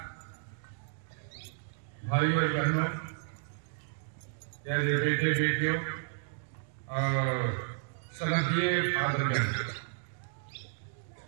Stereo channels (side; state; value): left; silent; digital silence